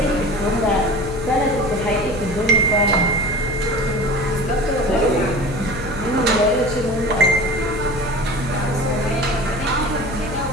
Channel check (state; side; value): noise; left; hum, 10 dB below the sound